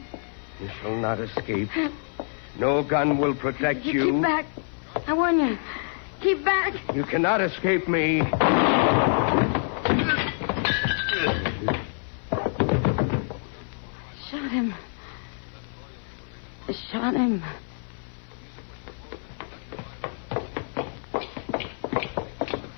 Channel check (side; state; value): right; silent; 57 dB below the other